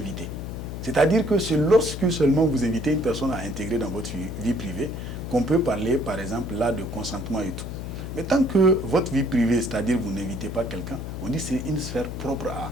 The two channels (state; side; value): noise; left; hum, 7 dB below the sound